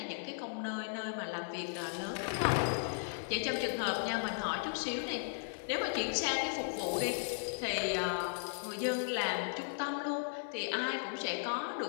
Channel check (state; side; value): silent; right; digital silence